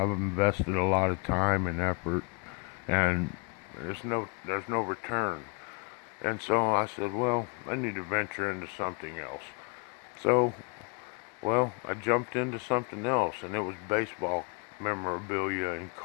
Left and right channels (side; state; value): right; quieter; 33.2 dB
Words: invested a lot of time and effort, and there's no return. And so I said, well, I need to venture into something else. So, well, I jumped into something else, and it was baseball memorabilia and